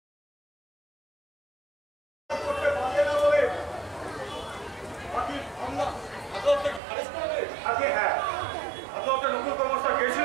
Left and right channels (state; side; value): drops out; left; at 6.8 s